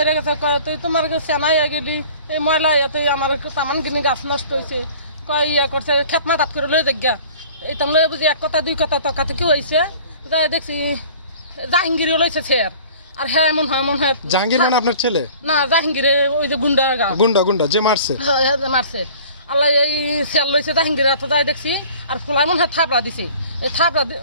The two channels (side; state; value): both; inverted; correlation -0.47